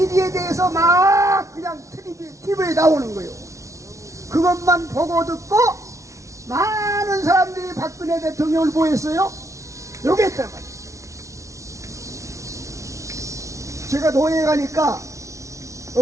대해서 막 그냥 TV에 나오는 거예요. 그것만 보고 듣고 많은 사람들이 박근혜 대통령을 보였어요. 요게 있단 말이에요. 제가 노예에 가니까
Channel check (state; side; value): late; left; 0.14 ms